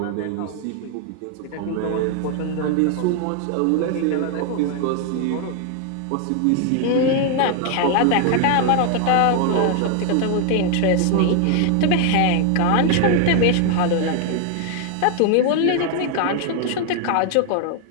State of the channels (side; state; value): both; different; correlation 0.00